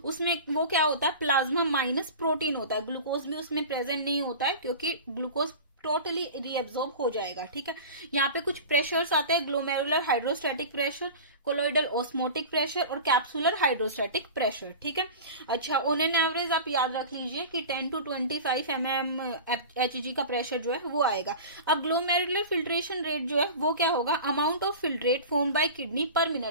उसमें वो क्या होता है, प्लाज्मा माइनस प्रोटीन होता है। ग्लूकोज भी उसमें प्रेजेंट नहीं होता है क्योंकि ग्लूकोज टोटली रीएब्जॉर्ब हो जाएगा। ठीक है, यहाँ पे कुछ प्रेशर्स आते हैं, glomerular hydrostatic pressure, colloidal osmotic pressure और कैप्सुलर हाइड्रोस्टैटिक प्रेशर। ठीक है, अच्छा ऑन एन एवरेज आप याद रख लीजिए कि 10 to 25 mm Hg का प्रेशर जो है वो आएगा। अब ग्लोमेरुलर फिल्ट्रेशन रेट जो है वो क्या होगा, amount of filtrate form by kidney पर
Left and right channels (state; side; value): inverted; both; correlation -0.33